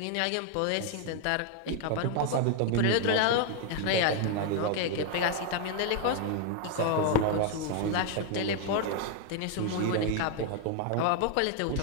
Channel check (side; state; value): both; different; correlation 0.01